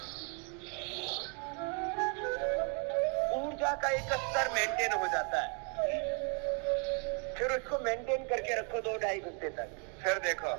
ऊर्जा का एक स्तर मेंटेन हो जाता है, फिर उसको मेंटेन करके रखो 2-2.5 घंटे तक। फिर देखो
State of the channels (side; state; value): left; quieter; 38.1 dB